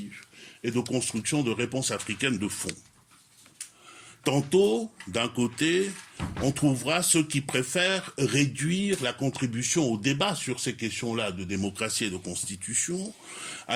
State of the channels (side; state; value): both; identical; correlation 1.00